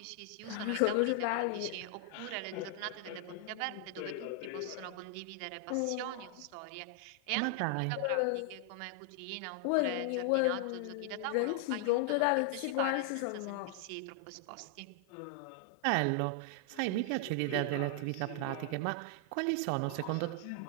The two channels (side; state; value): both; different; correlation 0.00